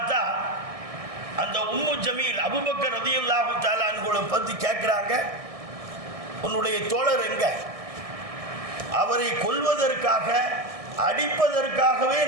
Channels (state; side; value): late; left; 1.6 ms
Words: அந்த உம்மு ஜமீல் அபூபக்கர் ரலியல்லாஹு தஆலா அன்ஹுவை பற்றி கேட்குறாங்க, உன்னுடைய தோழர் எங்க? அவரை கொல்வதற்காக அடிப்பதற்காகவே